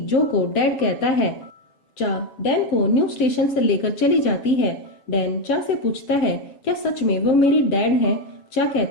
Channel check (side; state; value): right; late; 7.2 ms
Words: जो को डैड कहता है। चा डैन को न्यूज स्टेशन से लेकर चली जाती है। डैन चा से पूछता है क्या सच में वो मेरी डैड हैं? चा